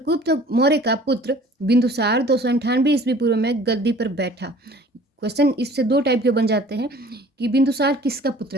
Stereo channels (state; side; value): normal; both; correlation 0.49